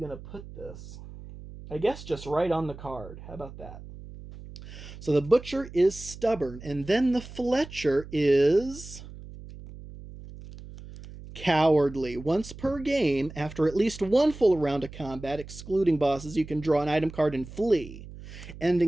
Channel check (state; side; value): noise; right; hum, 15 dB below the sound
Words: to put this? I guess just right on the card. How about that? So the Butcher is stubborn, and then the Fletcher is cowardly. Once per game, after at least 1 full round of combat, excluding bosses, you can draw an item card and flee,